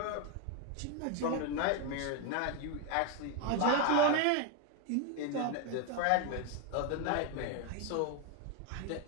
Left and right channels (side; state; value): both; different; correlation 0.01